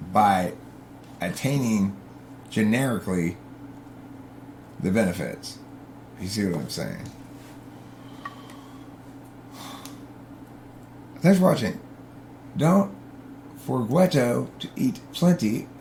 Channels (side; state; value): both; identical; correlation 1.00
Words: by attaining generically the benefits. You see what I'm saying? Thanks for watching. Don't forget to eat plenty